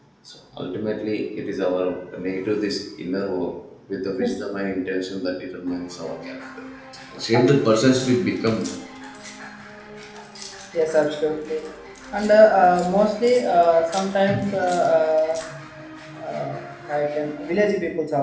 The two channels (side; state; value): both; identical; correlation 1.00